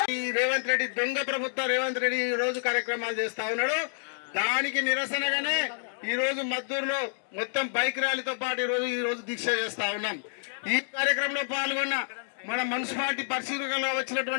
ఈ రేవంత్ రెడ్డి దొంగ ప్రభుత్వం రేవంత్ రెడ్డి ఈ రోజు కార్యక్రమాలు చేస్తా ఉన్నాడు. దానికి నిరసనగానే ఈ రోజు మద్దూరులో మొత్తం బైక్ ర్యాలీతో పాటు ఈ రోజు దీక్ష చేస్తా ఉన్నాం. ఈ కార్యక్రమంలో పాల్గొన్న మన మున్సిపాలిటీ పరిశీలనలో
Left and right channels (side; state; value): right; silent; digital silence